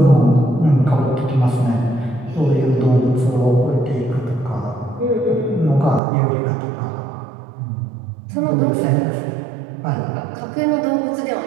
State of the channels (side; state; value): left; drops out; at 6.0 s